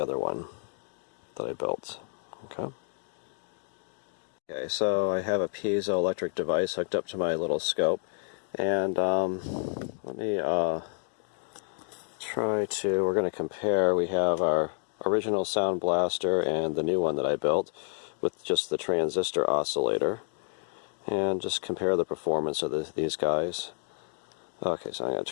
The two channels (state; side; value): silent; right; digital silence